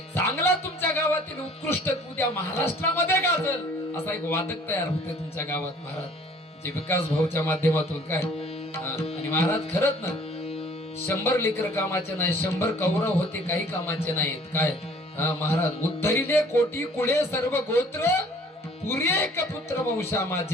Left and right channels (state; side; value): normal; both; correlation 0.54